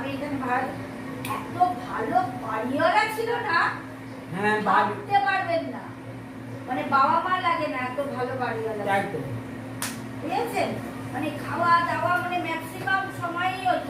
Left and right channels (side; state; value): both; identical; correlation 1.00